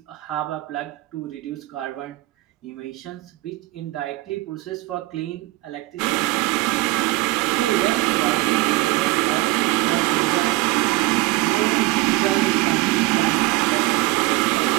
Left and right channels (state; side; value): quieter; left; 19.8 dB